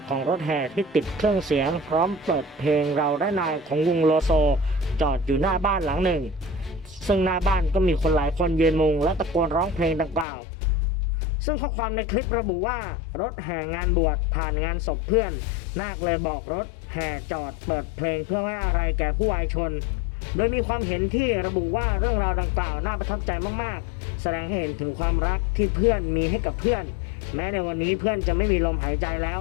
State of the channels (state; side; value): drops out; right; at 10.2 s